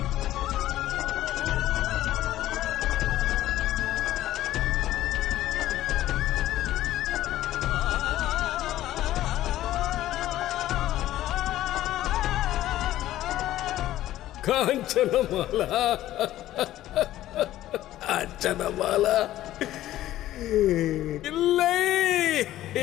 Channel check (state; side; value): quieter; right; 14.1 dB